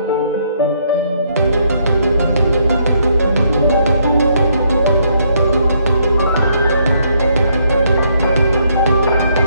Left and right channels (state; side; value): inverted; both; correlation -0.71